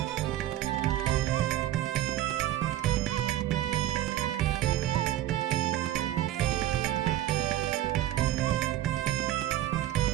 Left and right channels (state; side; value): quieter; left; 13.3 dB